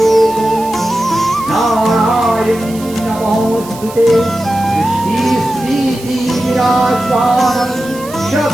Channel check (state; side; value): noise; right; hiss, 17 dB below the sound